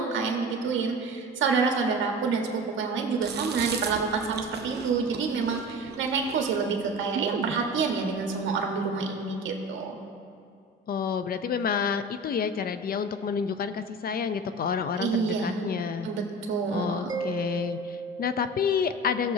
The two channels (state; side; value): normal; both; correlation 0.33